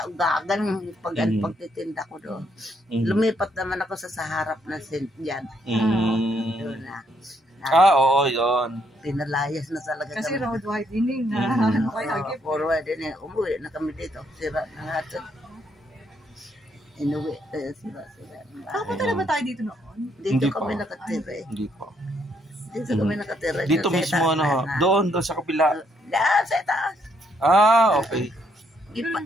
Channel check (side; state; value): both; normal; correlation 0.72